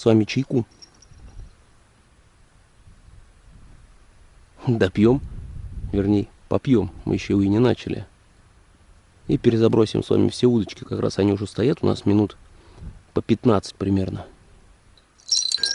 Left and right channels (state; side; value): identical; both; correlation 1.00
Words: вами чайку допьем. Вернее, попьем. Мы еще и не начали. И перезабросим с вами все удочки. Как раз они уже стоят у нас минут по 15 примерно.